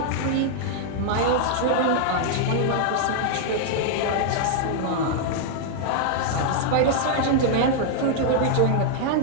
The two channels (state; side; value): different; both; correlation -0.01